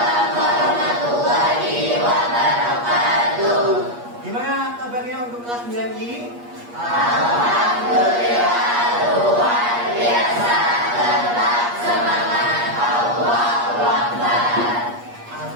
warahmatullahi wabarakatuh. Gimana kabarnya untuk kelas 9I? Alhamdulillah luar biasa. Tetap semangat. Allahu Akbar.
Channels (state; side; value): late; left; 8.4 ms